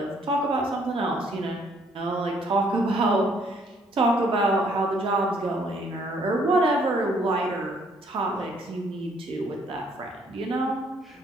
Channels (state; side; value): normal; both; correlation 0.65